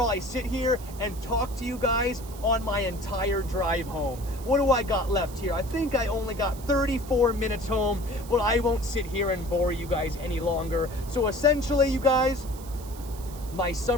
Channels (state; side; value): noise; right; hiss, 18 dB below the sound